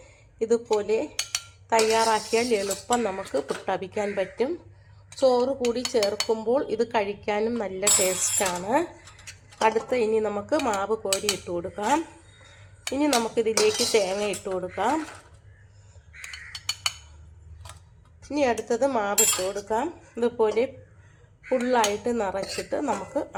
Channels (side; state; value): both; identical; correlation 1.00